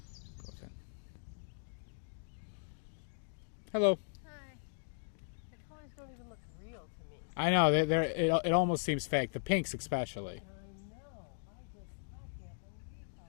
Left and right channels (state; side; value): silent; right; digital silence